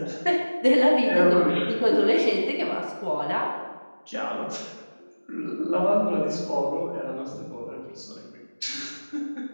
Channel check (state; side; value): inverted; both; correlation -1.00